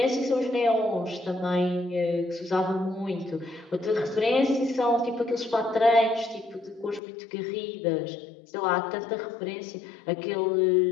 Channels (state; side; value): drops out; right; at 7.0 s